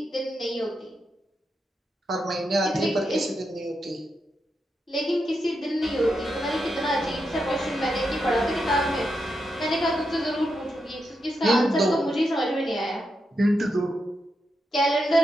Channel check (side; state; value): both; normal; correlation 0.85